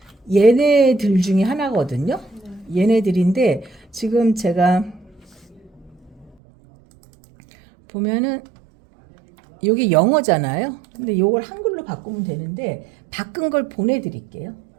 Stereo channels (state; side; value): drops out; left; at 6.4 s